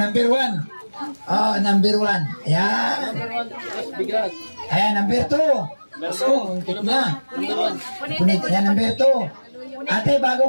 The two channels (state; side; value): inverted; both; correlation -1.00